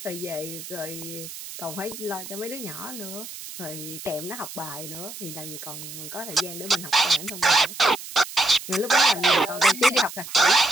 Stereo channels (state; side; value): noise; right; hiss, 11 dB below the sound